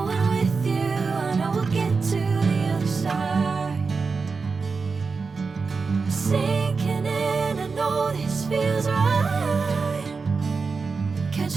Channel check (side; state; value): left; quieter; 4.7 dB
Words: with you, I know we'll get to the other side. Sinking in, I know this feels right.